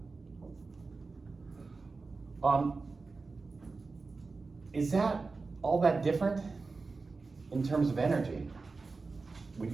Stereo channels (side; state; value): left; quieter; 4.0 dB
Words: Is that all that different in terms of energy? Would